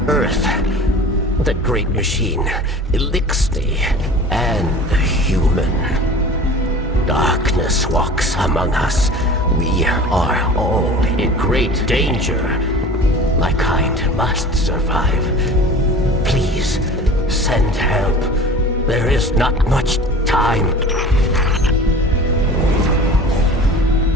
Earth, the great machine, 𝗙𝗟𝗧, and the human. Darkness walks among us. We are all in great danger. My kind must survive. Please, send help. There is not much time.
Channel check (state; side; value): normal; both; correlation 0.40